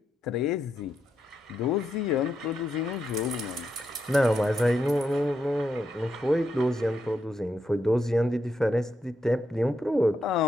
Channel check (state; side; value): normal; both; correlation 0.82